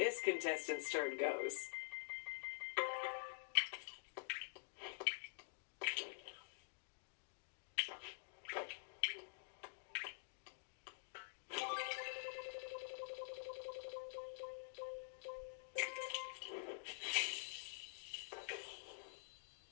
contestant's turn goes.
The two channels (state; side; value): silent; right; digital silence